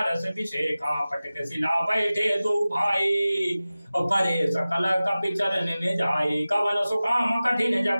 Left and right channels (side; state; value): both; inverted; correlation -0.97